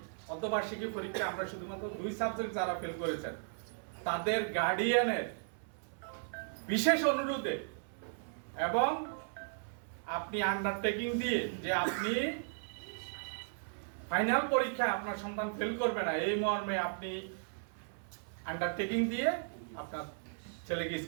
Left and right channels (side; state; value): left; silent; 54 dB below the other